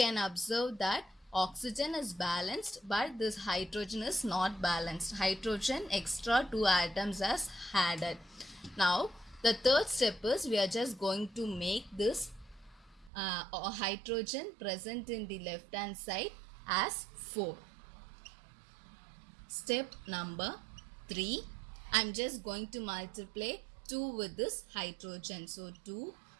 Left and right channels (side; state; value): left; drops out; at 13.1 s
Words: observe that oxygen is balanced but this hydrogen is not balanced. Hydrogen extra 2 atoms as added. Now the third step is we are just going to make this hydrogen present in the left hand side as 4. Step number 3, I am just going to multiply 2 with this hydrogen. So 2